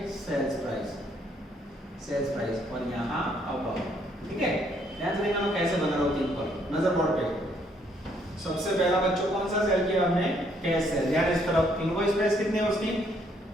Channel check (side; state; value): both; normal; correlation 0.68